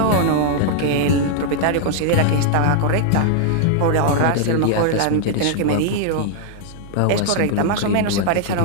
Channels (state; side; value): different; both; correlation -0.01